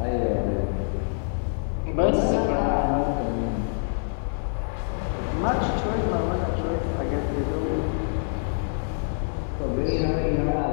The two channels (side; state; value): right; silent; 57 dB below the other